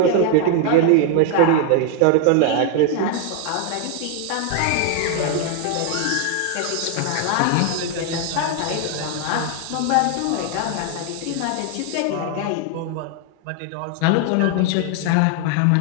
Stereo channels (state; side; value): different; both; correlation 0.00